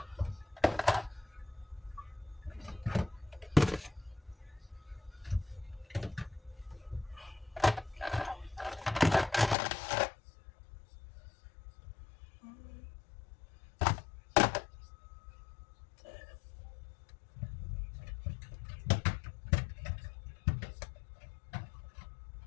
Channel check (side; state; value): right; drops out; at 9.6 s